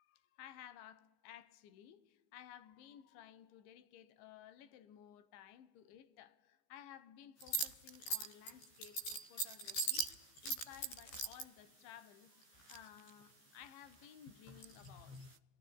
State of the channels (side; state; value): right; late; 15 ms